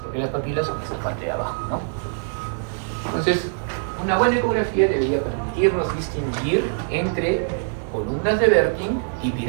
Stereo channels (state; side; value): silent; left; digital silence